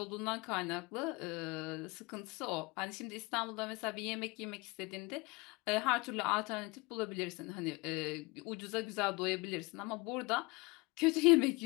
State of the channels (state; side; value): quieter; right; 25.2 dB